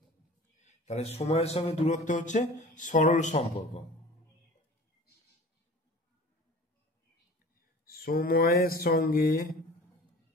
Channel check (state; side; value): normal; both; correlation 0.42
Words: তাহলে সময়ের সঙ্গে দূরত্ব হচ্ছে সরল সম্পর্ক, সময়ের সঙ্গে